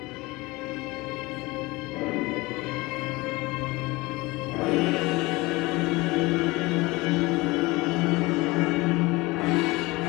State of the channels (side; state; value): right; quieter; 22.4 dB